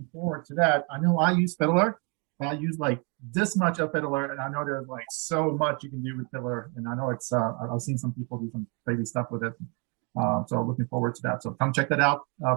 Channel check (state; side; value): quieter; left; 34.0 dB